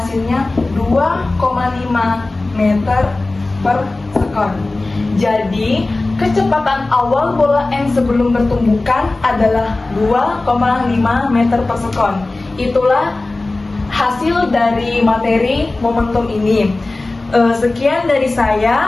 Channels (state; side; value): quieter; right; 3.1 dB